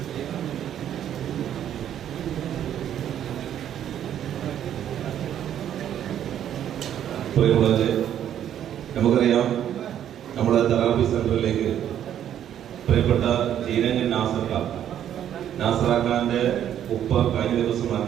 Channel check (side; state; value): left; quieter; 10.3 dB